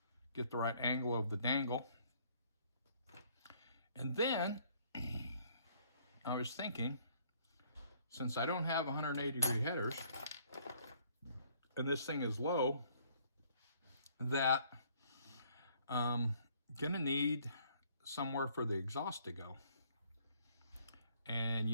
get the right angle of the dangle. And then I was thinking, since I don't have 180-degree headers, and this thing is low, that I'm gonna need somewhere for the exhaust to go. And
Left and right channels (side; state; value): both; inverted; correlation -0.62